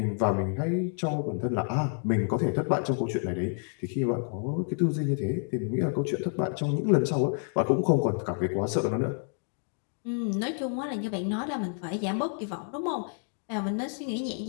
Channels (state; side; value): silent; right; 56 dB below the other